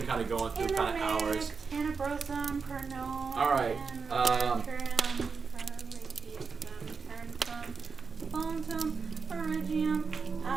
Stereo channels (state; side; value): quieter; left; 5.2 dB